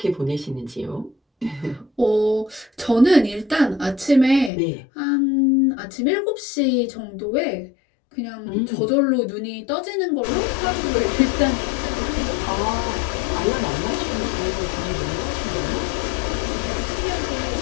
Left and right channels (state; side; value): drops out; right; at 4.5 s